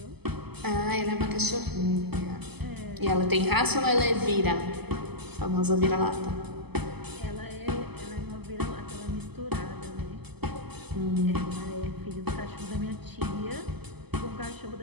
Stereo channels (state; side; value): late; left; 0.98 ms